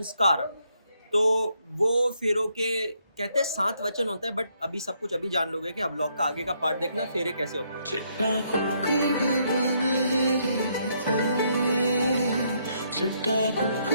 तो वो फेरों के कहते हैं 7 वचन होते हैं, बट अभी सब कुछ अभी जान लोगे कि अब ब्लॉग का आगे का पार्ट देखना फेरे कैसे होते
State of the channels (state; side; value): inverted; both; correlation -0.73